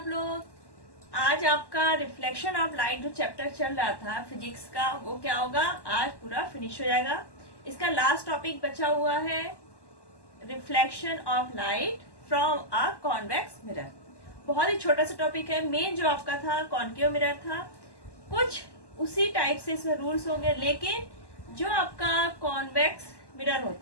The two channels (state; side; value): late; right; 1.1 ms